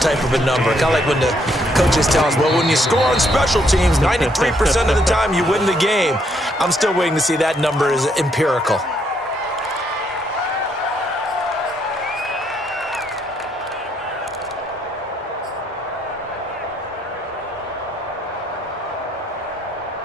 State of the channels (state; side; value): normal; both; correlation 0.72